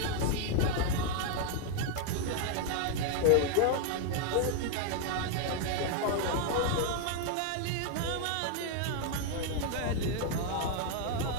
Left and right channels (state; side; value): different; both; correlation 0.00